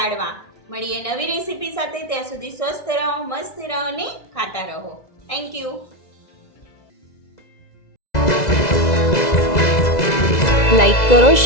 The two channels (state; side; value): late; right; 2.0 ms